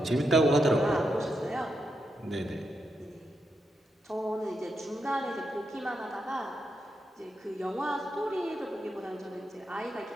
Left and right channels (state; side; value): normal; both; correlation 0.83